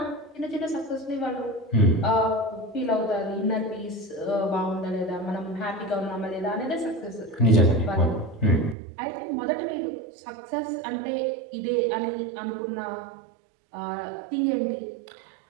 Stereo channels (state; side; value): drops out; left; at 8.8 s